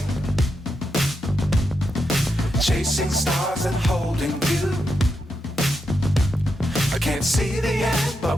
Chasing stars and holding you. I can't see the end, but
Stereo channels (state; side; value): normal; both; correlation 0.85